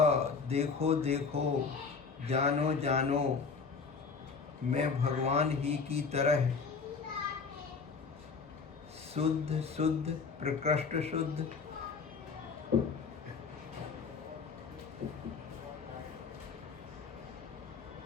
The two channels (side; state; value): right; quieter; 5.1 dB